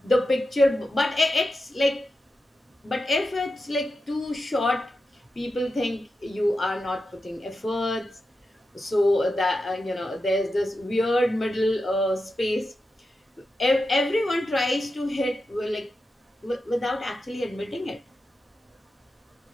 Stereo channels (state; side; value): normal; both; correlation 0.90